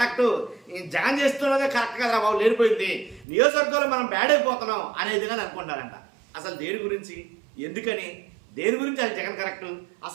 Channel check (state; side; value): drops out; left; at 3.2 s